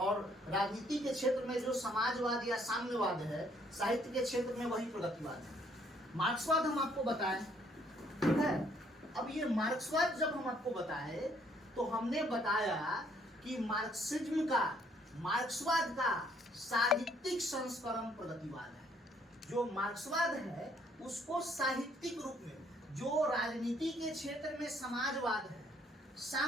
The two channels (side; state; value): both; normal; correlation 0.65